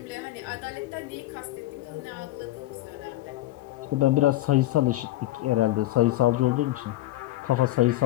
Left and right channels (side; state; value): right; quieter; 16.1 dB